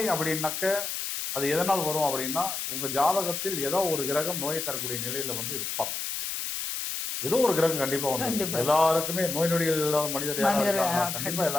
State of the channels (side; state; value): left; noise; hiss, 4 dB below the sound